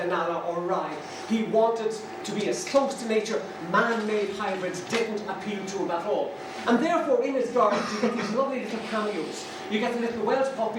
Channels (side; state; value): both; identical; correlation 1.00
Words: or Rye. He wanted to be as close to nature. Man-made hybrids didn't appeal to him at all. And therefore in his garden you get these lovely little cameos. You get the little Welsh